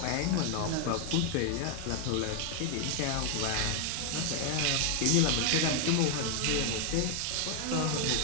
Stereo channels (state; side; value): different; both; correlation 0.00